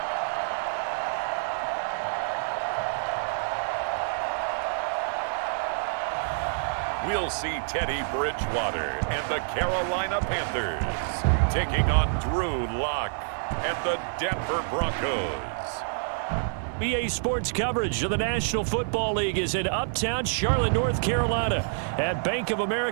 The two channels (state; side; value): silent; left; 56 dB below the other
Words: We'll see Teddy Bridgewater and the Carolina Panthers taking on Drew Lock and the Denver Broncos. EA Sports coverage of the National Football League is in uptown Charlotte, North Carolina at Bank of